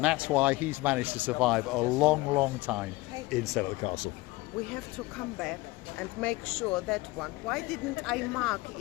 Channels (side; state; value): right; quieter; 21.0 dB